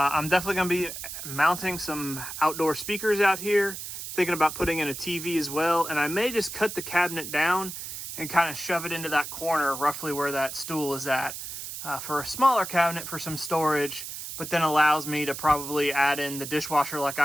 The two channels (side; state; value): right; noise; hiss, 8 dB below the sound